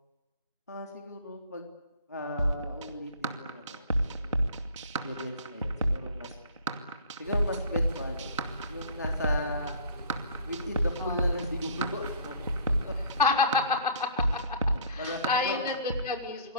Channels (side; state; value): both; inverted; correlation -0.49